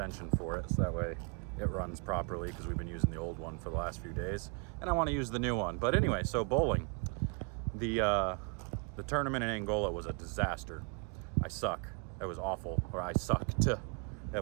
for it so that way it runs properly because we've been using the old one for the last few days and I want to use the new one. But anyway, so bowling. The tournament in Angola was a disaster. I suck. It was awful, or I sucked. It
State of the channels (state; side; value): quieter; left; 36.7 dB